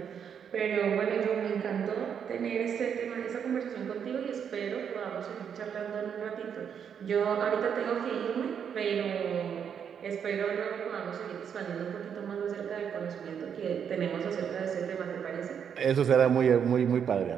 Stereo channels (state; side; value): quieter; left; 7.8 dB